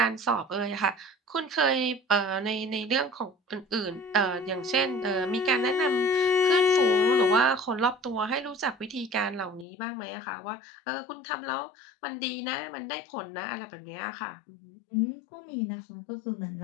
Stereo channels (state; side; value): drops out; right; at 9.7 s